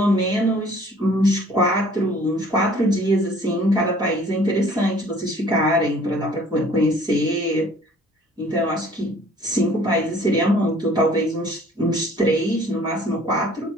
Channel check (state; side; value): normal; both; correlation 0.54